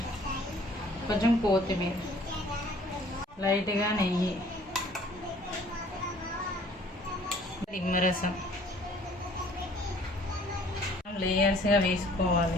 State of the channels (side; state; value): both; normal; correlation 0.55